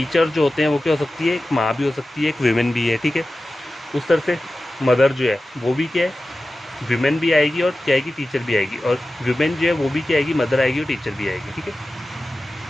जो होते हैं वो क्या हो सकती है, एक माँ भी हो सकती है, एक विमेन भी है, ठीक है। उस तरह से मदर जो है वो भी क्या है, विमेन भी आएगी और क्या आएगी, टीचर भी आएगी। और विमेन जो है वो भी क्या आएगी, मदर आएगी और टीचर भी आएगी, ठीक है।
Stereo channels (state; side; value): normal; both; correlation 0.94